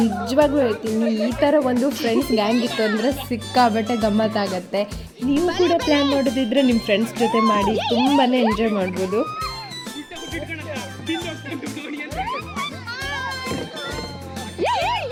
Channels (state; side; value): identical; both; correlation 1.00